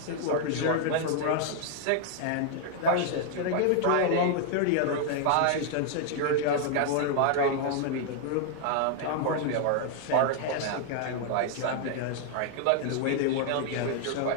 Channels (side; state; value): both; different; correlation 0.00